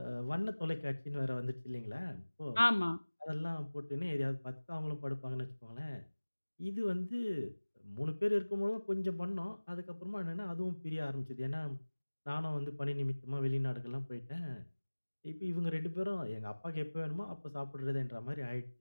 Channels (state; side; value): inverted; both; correlation -1.00